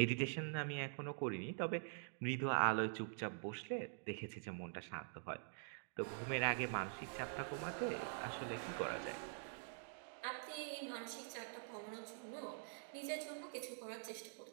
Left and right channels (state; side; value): silent; left; digital silence